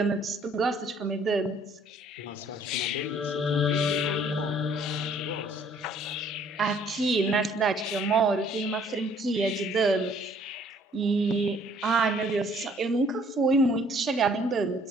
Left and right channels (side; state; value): both; normal; correlation 0.60